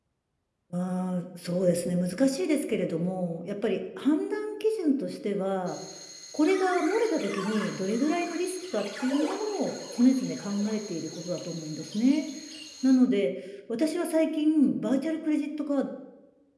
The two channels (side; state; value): both; identical; correlation 1.00